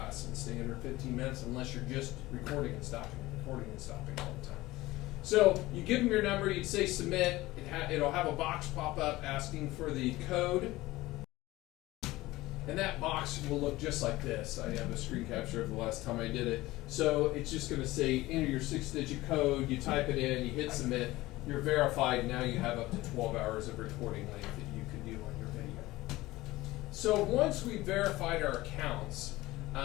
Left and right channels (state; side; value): quieter; right; 18.6 dB